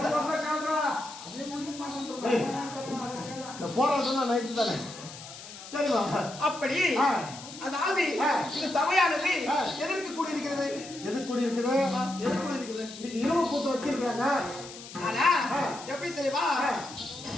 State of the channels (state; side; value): noise; left; hiss, 14 dB below the sound